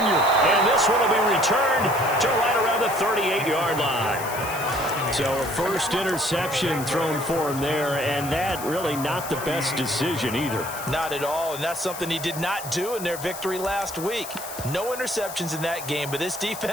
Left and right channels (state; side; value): noise; left; hiss, 11 dB below the sound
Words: And this one will be returned to right around the 38-yard line. So a first interception thrown for him there, and that really not the best decision either. Not at all, and that's something he did not do in their victory last week. No interceptions in that game, but this